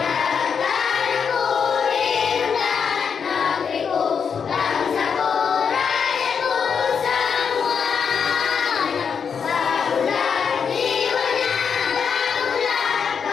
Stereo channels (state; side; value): quieter; right; 6.6 dB